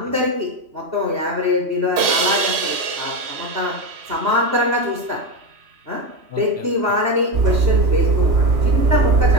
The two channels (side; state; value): left; late; 3.0 ms